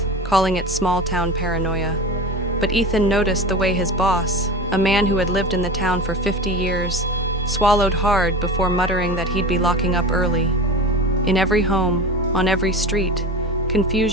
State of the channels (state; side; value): normal; both; correlation 0.30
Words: calling it small-town paranoia. But Ethan noticed the way his boss, a man who had lived in the town for 50 years, swallowed hard before muttering that he'd be locking up early. In every home, on every street,